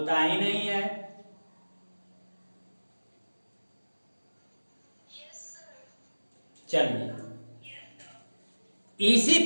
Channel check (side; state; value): both; inverted; correlation -1.00